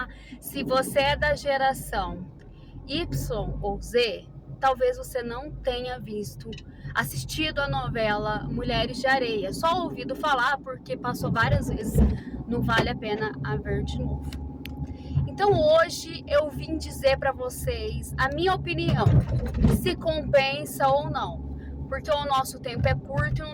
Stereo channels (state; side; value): identical; both; correlation 1.00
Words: se você é da geração Y ou Z, talvez você não tenha assistido a novela Mulheres de Areia, só ouvido falar porque passou várias vezes, não vale a pena a ver de novo. Então hoje eu vim dizer para vocês a minha opinião, se compensa ou não, porque o nosso tempo é curto e não